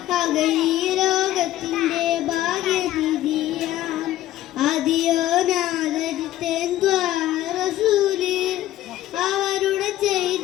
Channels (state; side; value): quieter; right; 14.2 dB